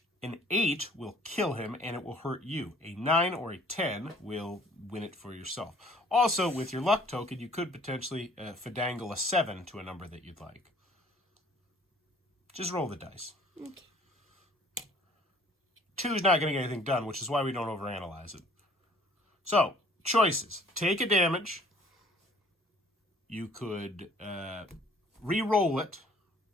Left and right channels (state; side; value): normal; both; correlation 0.56